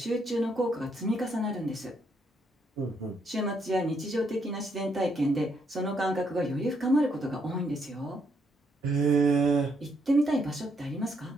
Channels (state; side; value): normal; both; correlation 0.74